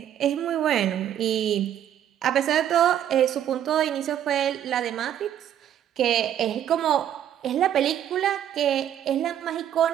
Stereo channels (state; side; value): quieter; left; 10.5 dB